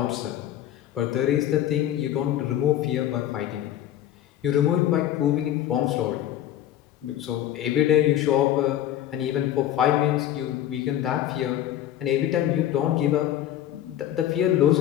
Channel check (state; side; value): quieter; right; 12.0 dB